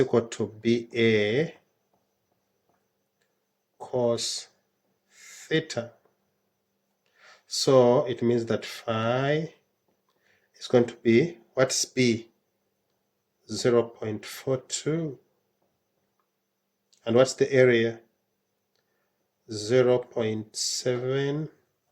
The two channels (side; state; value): both; identical; correlation 1.00